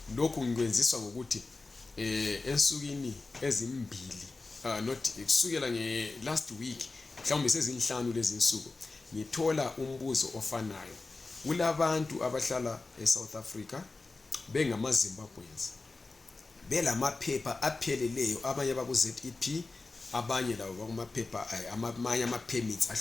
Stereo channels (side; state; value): right; quieter; 3.6 dB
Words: Lokhu ngikwenziswa ngokuthi ensukwini ezimbili not kusukela last week mhlawumbe sezinhlanu lezi insuku ngithola umbuzo ofanayo. Kulabantu abahlala eSouth Africa bengama Zimbabweans belamaphepha apheleleyo, abanye baku ZEP, abanye labo bakumaphepha amanye ama permits